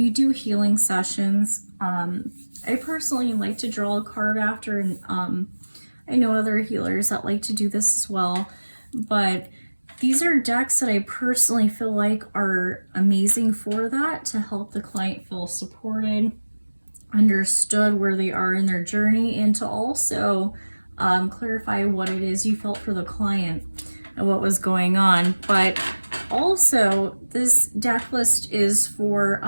do healing sessions, I personally like to draw a card after, and I know other healers that like to do this as well, but these are decks that I personally feel like are amazing for that, to help the client feel supported, understood where they are in their journey, and to also clarify what it is you felt for the client and what was going on. But also, this deck list is for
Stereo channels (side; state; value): both; inverted; correlation -1.00